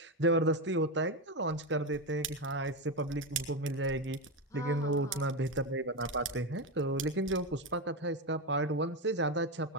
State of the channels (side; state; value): both; normal; correlation 0.12